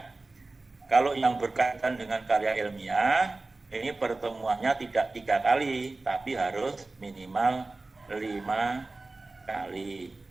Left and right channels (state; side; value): quieter; left; 3.3 dB